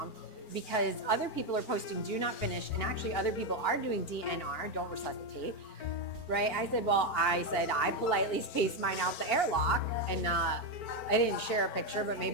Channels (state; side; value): late; right; 4.4 ms